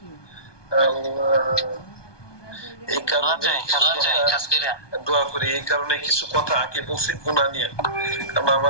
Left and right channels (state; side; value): late; right; 1.2 ms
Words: এই কারণে দোয়া করি। এই কারণে কিছু কথা আগে বলছি গুনাহ নিয়ে, কারণ